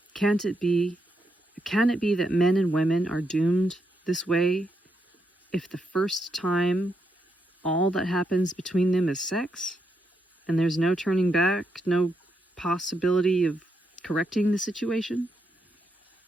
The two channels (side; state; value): both; normal; correlation 0.81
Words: Can it be that men and women are doomed this way if the first time all that happens between them is sex, and there's no turning back, no possibility of correcting the situation?